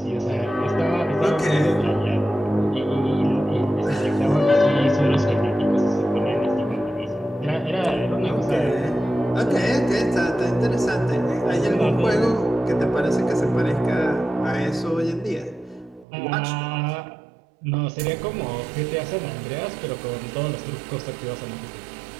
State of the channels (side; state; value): left; drops out; at 16.1 s